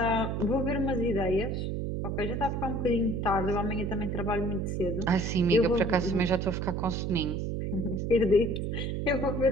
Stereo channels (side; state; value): right; noise; hum, 2 dB below the sound